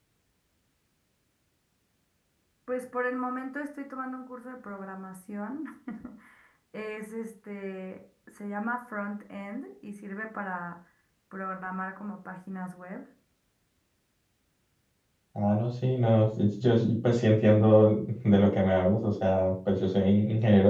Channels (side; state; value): both; identical; correlation 1.00